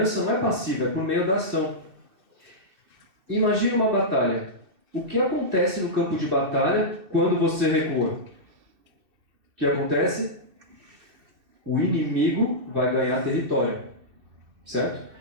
não é passiva, é por meio da ação. Imagine uma batalha. O que acontece no campo de batalha quando você recua? O que acontece? O inimigo vai ganhar território. Certo?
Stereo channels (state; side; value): late; left; 2.6 ms